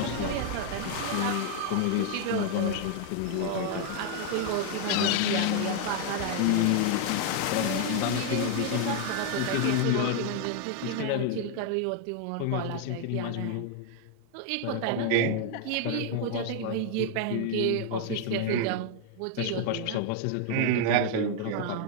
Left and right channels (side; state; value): both; different; correlation 0.00